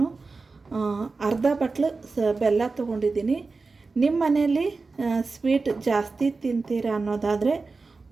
ಅರ್ಧ ಬಟ್ಲು ಬೆಲ್ಲ ತೊಗೊಂಡಿದ್ದೀನಿ. ನಿಮ್ಮ ಮನೆಯಲ್ಲಿ ಸ್ವೀಟ್ ಜಾಸ್ತಿ ತಿಂತೀರ ಅನ್ನೋದಾದರೆ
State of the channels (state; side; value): quieter; left; 4.0 dB